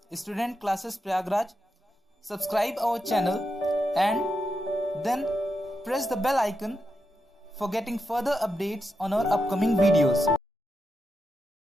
Student Classes Prayagraj. Subscribe our channel and then press the bell icon for getting further updates on our upcoming videos.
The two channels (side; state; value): both; normal; correlation 0.86